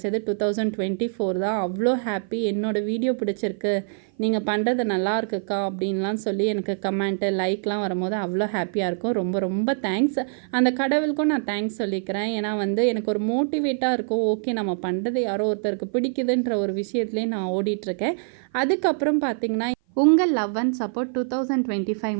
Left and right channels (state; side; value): silent; left; 55 dB below the other